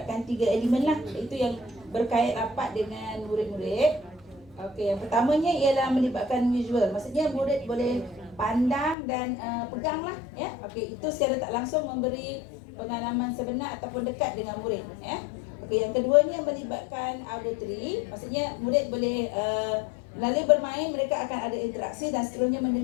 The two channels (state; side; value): drops out; right; at 9.0 s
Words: 3 elemen lah. Itu yang berkait rapat dengan murid-murid. Okey, yang pertamanya ialah melibatkan visual. Maksudnya murid boleh pandang dan pegang lah, ya. Okey, itu secara tak langsung memberi pengalaman sebenar ataupun dekat dengan murid, ya. Okey, yang keduanya melibatkan auditory. Maksudnya murid boleh melalui bermain mereka akan ada interaksi dan seterusnya